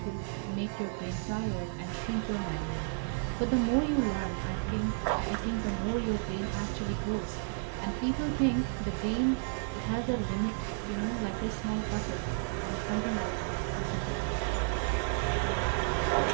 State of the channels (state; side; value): silent; left; 55 dB below the other